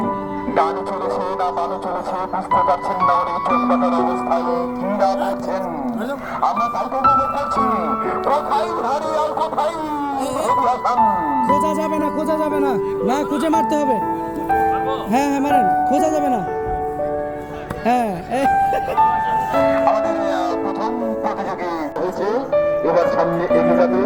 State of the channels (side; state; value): both; identical; correlation 1.00